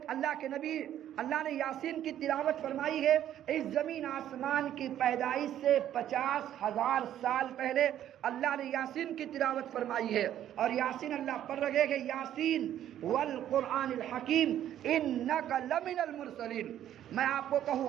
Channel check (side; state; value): left; quieter; 11.3 dB